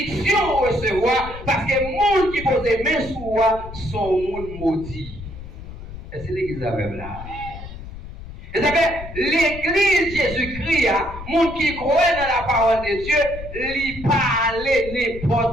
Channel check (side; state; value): left; noise; rumble, 12 dB below the sound